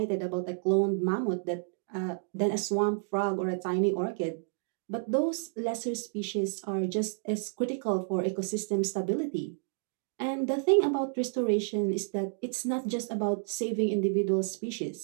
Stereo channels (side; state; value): left; silent; digital silence